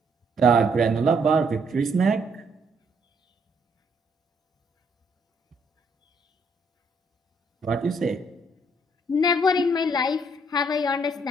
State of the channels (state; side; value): normal; both; correlation 0.69